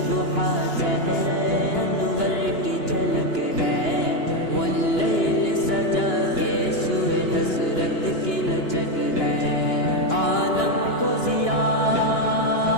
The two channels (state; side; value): late; right; 2.9 ms